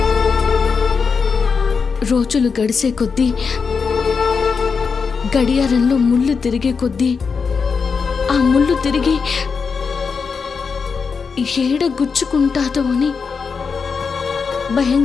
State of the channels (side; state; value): right; quieter; 5.5 dB